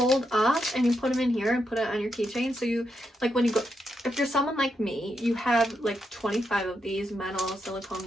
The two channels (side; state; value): both; normal; correlation 0.83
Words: up and you put them in here and put it on your keychain. So you like when you go, if you're someone like me, you have like 25 of these metal, silicone,